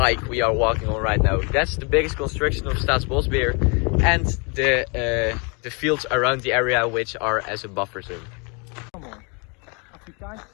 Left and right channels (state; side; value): quieter; right; 33.1 dB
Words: we are walking on right now. That's the biggest construction of Staatsbosbeheer, and the fields around the area, which are as a buffer zone.